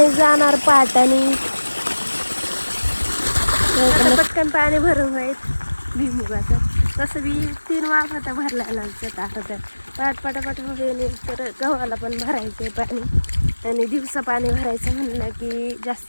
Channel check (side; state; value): both; inverted; correlation -1.00